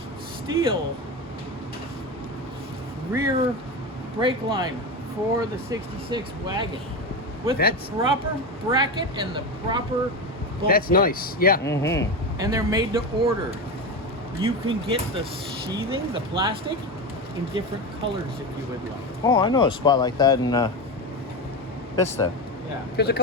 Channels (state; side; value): normal; both; correlation 0.19